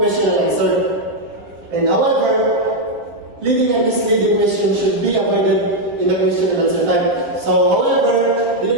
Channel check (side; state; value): left; late; 7.5 ms